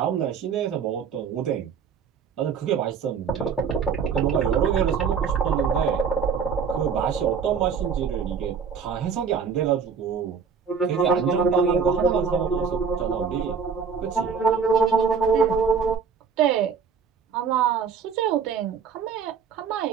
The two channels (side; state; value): left; quieter; 6.2 dB